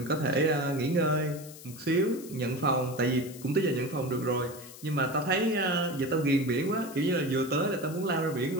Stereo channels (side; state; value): left; noise; hiss, 17 dB below the sound